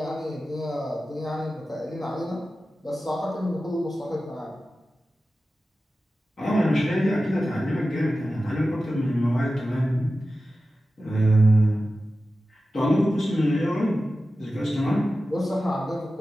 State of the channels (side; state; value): both; normal; correlation 0.94